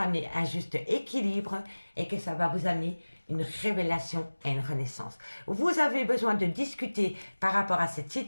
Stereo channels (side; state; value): both; inverted; correlation -1.00